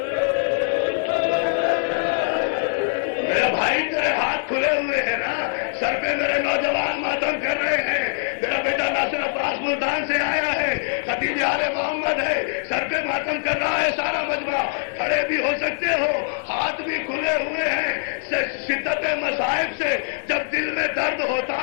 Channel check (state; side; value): silent; right; digital silence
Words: میرے بھائی تیرے ہاتھ کھلے ہوئے ہیں نا. سر پہ میرے نوجوان ماتم کر رہے ہیں. میرا بیٹا ناصر عباس ملتان سے آیا ہے، خطیب یار محمد ہے، سر پہ ماتم کر رہا ہے سارا مجمع. کھڑے بھی ہو سکتے ہو، ہاتھ بھی کھلے ہوئے ہیں. شدت مصائب سے جب دل میں درد ہوتا